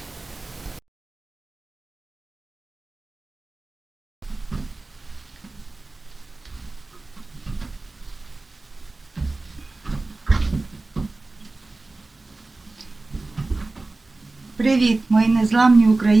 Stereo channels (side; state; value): left; quieter; 3.3 dB